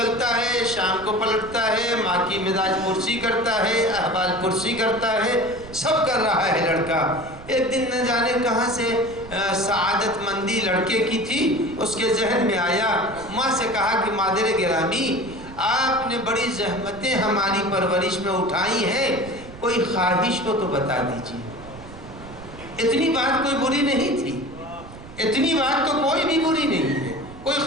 ہے، شام کو پلٹتا ہے، ماں کی مزاج پرسی کرتا ہے، احوال پرسی کرتا ہے، سب کر رہا ہے لڑکا۔ ایک دن نہ جانے کہاں سے سعادت مندی لڑکے کی تھی، اس کے ذہن میں آیا، ماں سے کہا کہ مادر گرامی، آپ نے بڑی زحمتیں ہماری پرورش میں اٹھائی ہیں، کوئی خواہش ہو تو بتا دیجیے۔ اتنی بات کوئی بری نہیں تھی، اتنی بات تو کوئی بھی بری نہیں ہے، کوئی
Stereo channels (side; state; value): right; noise; rumble, 16 dB below the sound